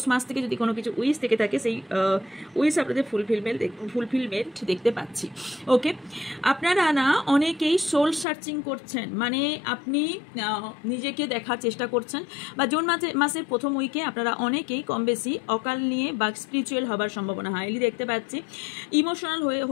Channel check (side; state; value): right; drops out; at 8.2 s